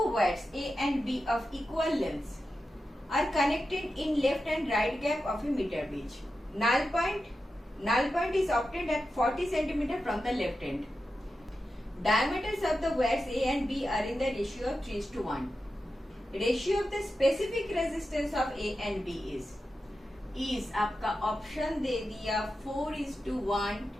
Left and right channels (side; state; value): both; normal; correlation 0.91